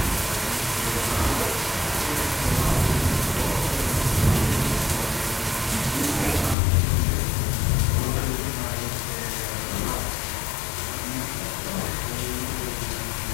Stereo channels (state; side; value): drops out; right; at 6.6 s